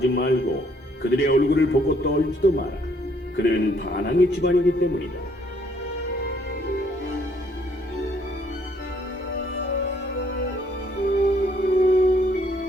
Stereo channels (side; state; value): both; normal; correlation 0.66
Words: 말고 그들의 얼굴을 보고 떨지도 마라. 그들은 반항의 집안이기 때문이다.